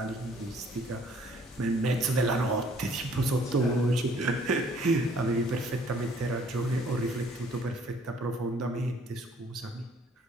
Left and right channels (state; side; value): normal; both; correlation 0.59